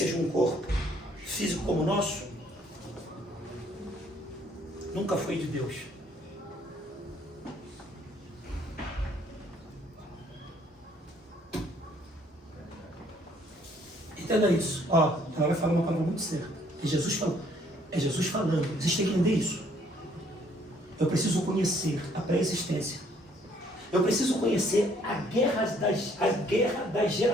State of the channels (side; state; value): both; normal; correlation 0.64